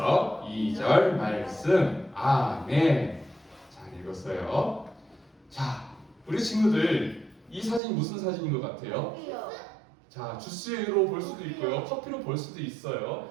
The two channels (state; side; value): drops out; left; at 7.8 s